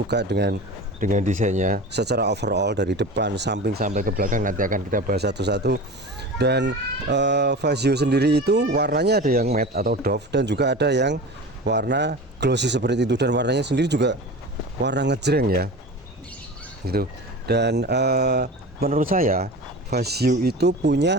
dengan desainnya secara overall dari depan, samping sampai ke belakang. Nanti akan kita bahas satu-satu. Dan Fazio sendiri itu warnanya ada yang matte atau doff dan juga ada yang warna glossy seperti itu. Dan warnanya sendiri juga warna ngejreng ya, gitu. Dan menurut saya Fazio itu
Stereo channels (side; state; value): both; normal; correlation 0.33